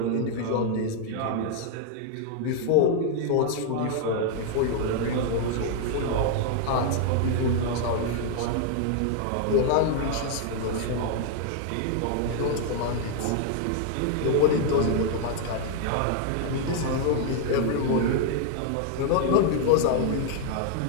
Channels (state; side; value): different; both; correlation 0.00